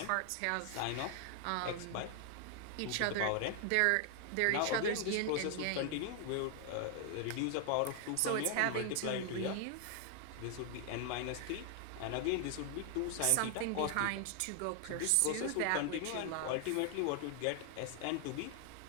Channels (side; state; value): both; different; correlation 0.00